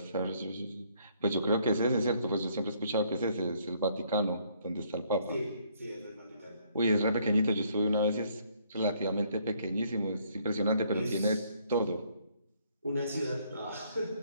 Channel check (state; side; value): inverted; both; correlation -0.66